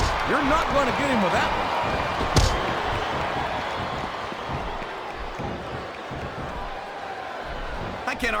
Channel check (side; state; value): both; identical; correlation 1.00